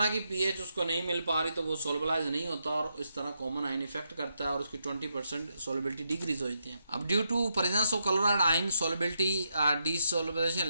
की पीएच उसको नहीं मिल पा रही तो वो सोलबलाइज नहीं होता और इस तरह कॉमन आयन इफेक्ट करता है और उसकी 20% सोलबिलिटी डिक्रीज हो जाती है। अब due to presence of chloride ion solubility desolubilization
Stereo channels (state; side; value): inverted; both; correlation -0.81